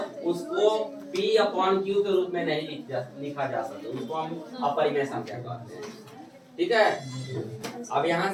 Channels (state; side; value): identical; both; correlation 1.00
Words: उसको p अपॉन क्यू के रूप में नहीं लिखा जा सके, उसको हम अपरिमेय संख्या कहते हैं। ठीक है, अब यहाँ